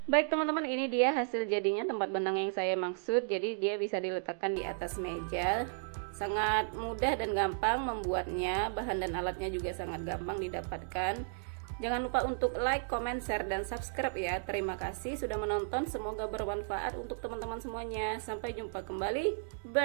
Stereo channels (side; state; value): left; silent; digital silence